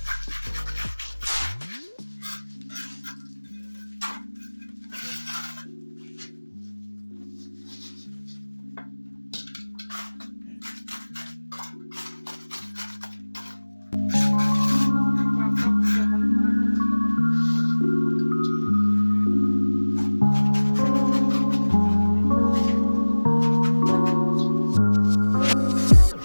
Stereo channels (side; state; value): both; inverted; correlation -1.00